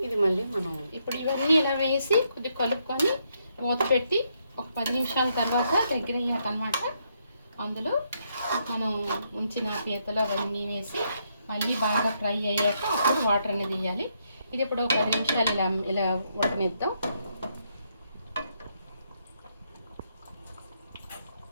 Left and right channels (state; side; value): inverted; both; correlation -0.76